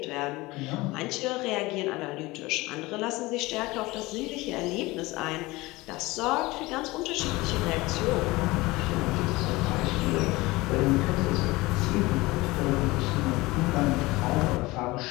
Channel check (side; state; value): right; quieter; 21.1 dB